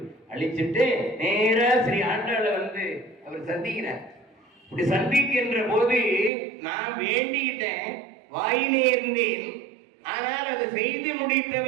அழிச்சிட்டு நேரா ஸ்ரீ ஆண்டாளை வந்து அவர் சந்திக்கிறார். இப்படி சந்திக்கின்ற போது நான் வேண்டிக்கிட்டேன், வாயினே இருந்தேன், ஆனால் அதை செய்து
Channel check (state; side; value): drops out; left; at 6.3 s